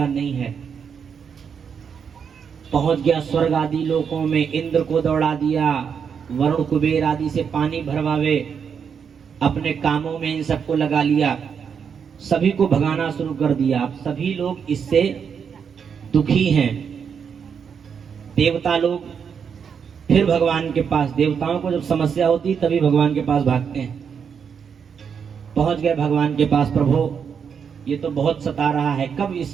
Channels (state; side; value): quieter; left; 6.9 dB